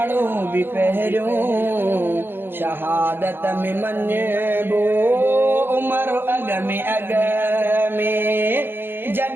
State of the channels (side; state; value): left; late; 0.10 ms